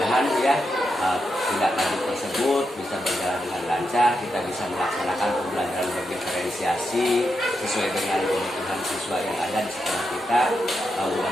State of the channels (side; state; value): both; normal; correlation 0.85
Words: ya tindak lanjut tersebut bisa berjalan dengan lancar, kita bisa melaksanakan pembelajaran berdiferensiasi sesuai dengan kebutuhan siswa yang ada di sekolah kita.